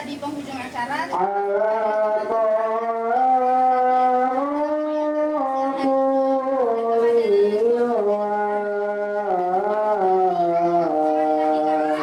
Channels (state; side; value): identical; both; correlation 1.00